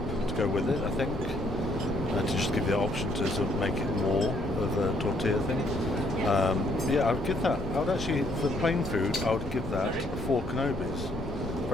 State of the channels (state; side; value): noise; left; rumble, 11 dB below the sound